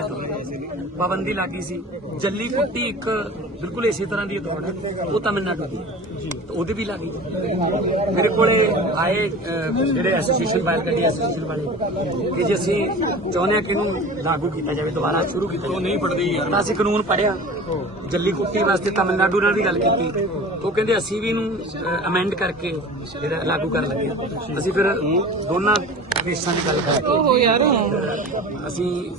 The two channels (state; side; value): normal; both; correlation 0.38